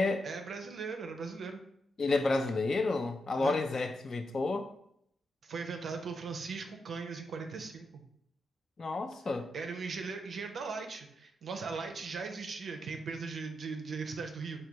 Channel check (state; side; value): normal; both; correlation 0.84